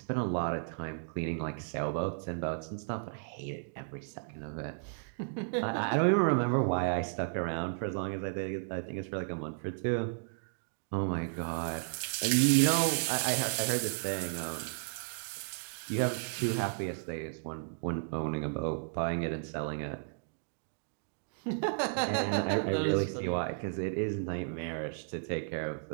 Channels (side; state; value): left; silent; digital silence